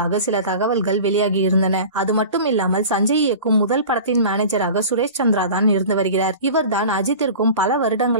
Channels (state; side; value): inverted; both; correlation -0.37